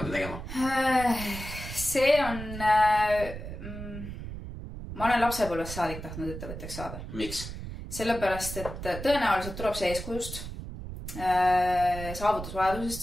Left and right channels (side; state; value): right; noise; rumble, 9 dB below the sound